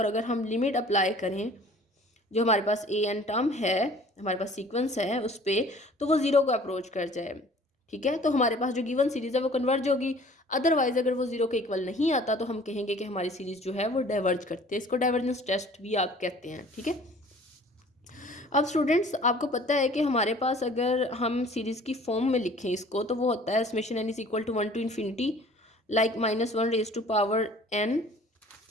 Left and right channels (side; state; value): both; normal; correlation 0.50